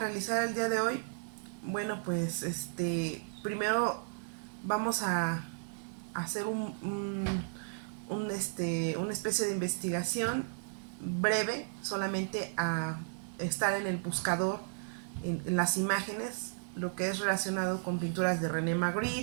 el día de hoy, bueno, pues primero vamos a hacer una especie de investigación breve, solamente a estar en el buscador, en las imágenes, lo que es relacionado con pinturas de René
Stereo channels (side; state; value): left; silent; digital silence